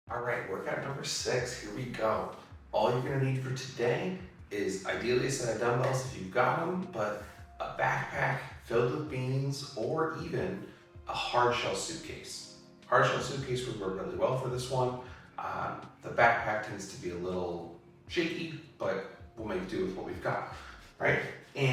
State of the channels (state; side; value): identical; both; correlation 1.00